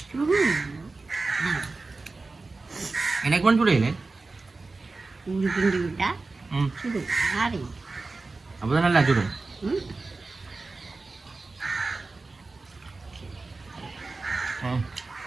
எனக்கு ஒன்று சுடையிலே ஊரு கிண்டி விட்டா ம் சுடு ஆறி அப்போதான் நல்லா சுடும்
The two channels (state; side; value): quieter; left; 3.6 dB